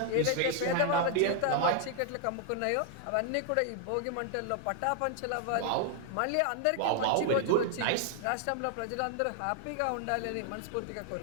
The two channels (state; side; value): different; both; correlation 0.00